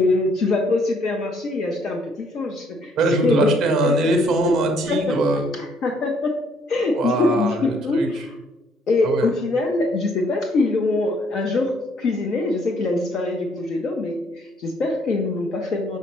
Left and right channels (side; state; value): both; normal; correlation 0.66